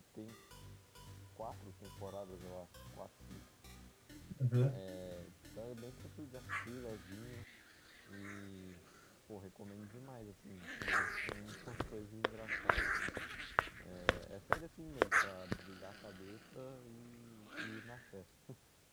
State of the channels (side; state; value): both; identical; correlation 1.00